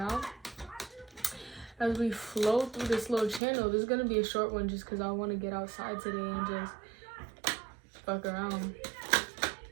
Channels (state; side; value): drops out; left; at 3.4 s